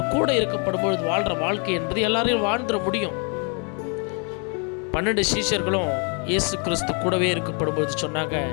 கூட இருக்கப்படும் பொழுது வாழ்கிற வாழ்க்கை என்பது எல்லாரையும் வாழ்ந்துட முடியும். 12 சீஷர்களும் இயேசு கிறிஸ்து கூடவே இருக்கப்படும் பொழுது சொன்னாங்க,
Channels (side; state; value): right; quieter; 37.4 dB